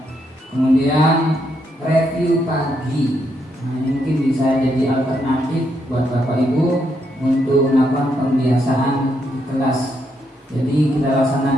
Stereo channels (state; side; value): normal; both; correlation 0.78